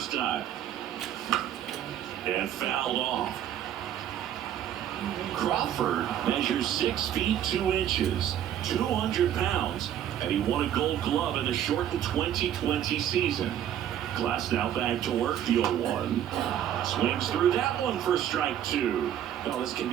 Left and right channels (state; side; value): quieter; left; 10.6 dB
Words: time. And fouled off. Crawford measures 6 feet 2 inches, 200 pounds, and he won a Gold Glove in the shortened 2020 season. Glasnow back to work, the 0-1. Swings through that one for strike 2. Well, this can